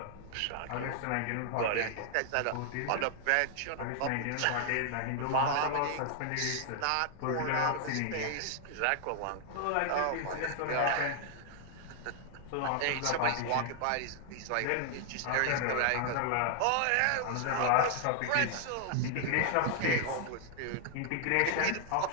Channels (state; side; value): different; both; correlation 0.00